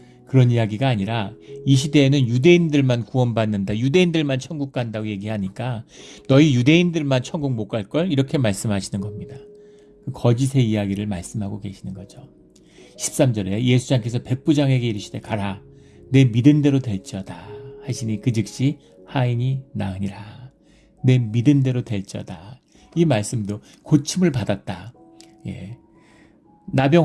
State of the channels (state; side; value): identical; both; correlation 1.00